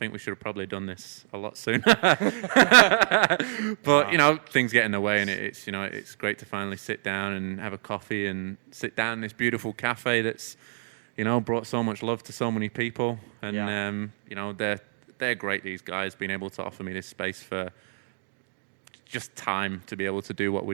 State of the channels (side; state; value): left; silent; digital silence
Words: we should have probably done this a lot sooner. But, you know, things get in the way, and it's, you know, it's great to finally sit down and have a coffee and sit down in this beautiful cafe that's, you know, brought so much love to so many people. And, you know, they're great, these guys, being able to offer me this space for just time to be able to do what we're